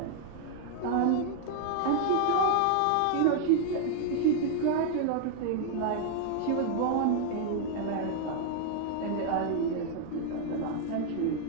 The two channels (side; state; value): both; different; correlation 0.00